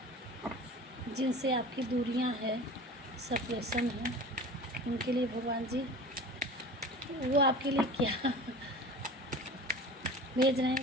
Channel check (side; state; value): both; normal; correlation 0.37